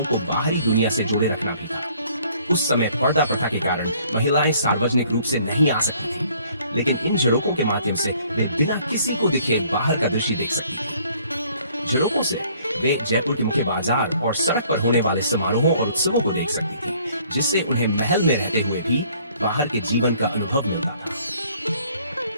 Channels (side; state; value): both; inverted; correlation -0.60